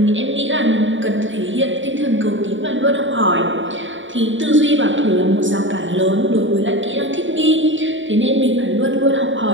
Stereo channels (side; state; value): left; late; 0.55 ms